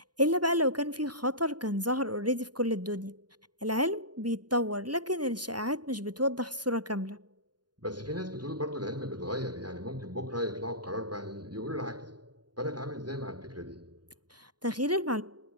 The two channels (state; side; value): late; left; 0.70 ms